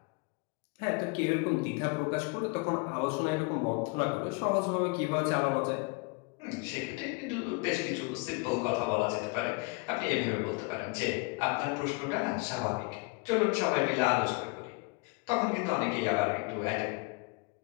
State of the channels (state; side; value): quieter; right; 29.3 dB